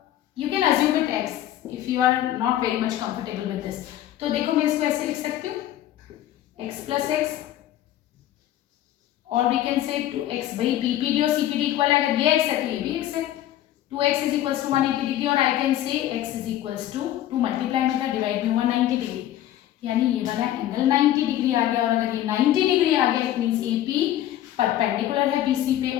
you can assume it x if you are not very much comfortable with this, तो देखो मैं इसको ऐसे लिख सकती हूँ x प्लस x, और वी कैन से 2x, भाई BPD और CPD इक्वल है, अगर ये x है तो ये भी x है, 2x is equals to 180 degree, और I can say x is equals to 2 multiply मतलब डिवाइड बाय 190 डिग्री, यानी ये वाला एंगल 90 डिग्री आ गया, और अगर ये 90 डिग्री आ गया, इट मींस AP परपेंडिकुलर है BC पे,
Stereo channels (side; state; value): right; quieter; 12.8 dB